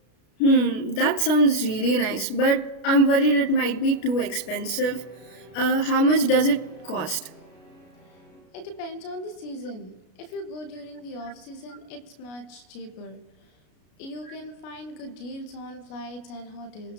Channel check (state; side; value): late; right; 33 ms